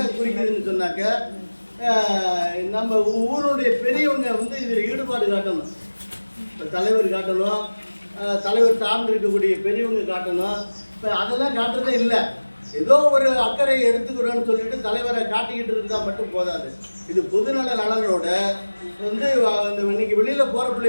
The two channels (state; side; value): inverted; both; correlation -1.00